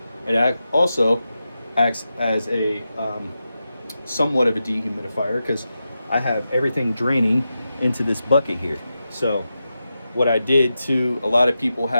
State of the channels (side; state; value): both; inverted; correlation -0.90